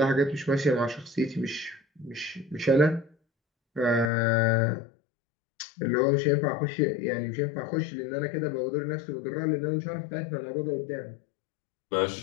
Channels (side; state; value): right; drops out; at 4.1 s